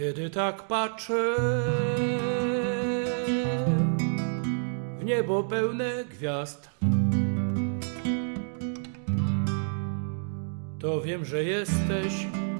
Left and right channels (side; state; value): left; silent; digital silence